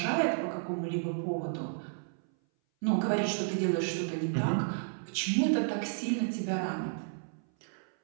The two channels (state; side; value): silent; left; 56 dB below the other